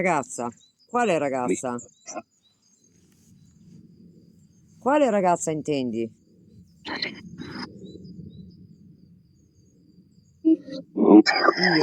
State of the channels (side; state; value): both; identical; correlation 1.00